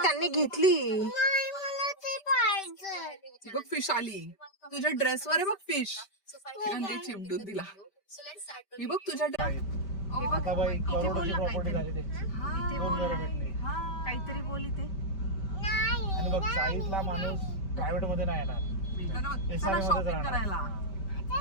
त्यांनी घेतली. नाही, मला ते पाहिजे. बघ फिश आली तुझ्या ड्रेसवर आहे. बघ फिश चिमटून दिला. मी बघ तुझ्या आता बाई करोडोची प्रॉपर्टी झाली ते. दोन घरं भेटली. काहीतरी बोल इथे. आणि बघ साईडला माणूस प्रायव्हेट मध्ये नाही येणार, SRA मध्येच शॉपिंग राहणार. करायला.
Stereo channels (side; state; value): right; late; 5.1 ms